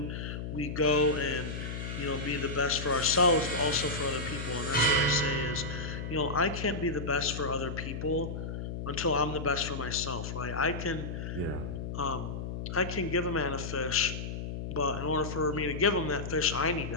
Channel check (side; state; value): left; noise; hum, 5 dB below the sound